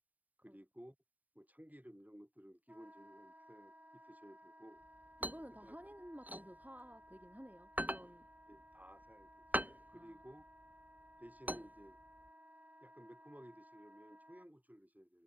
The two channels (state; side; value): late; left; 0.078 ms